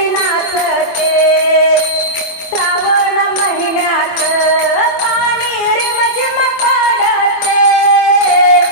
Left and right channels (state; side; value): late; right; 24 ms